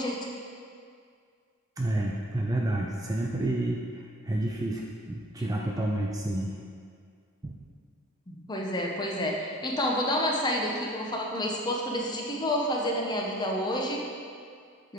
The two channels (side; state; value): both; normal; correlation 0.48